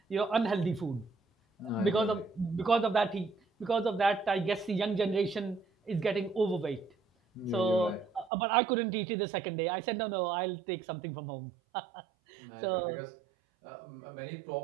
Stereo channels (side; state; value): left; drops out; at 8.3 s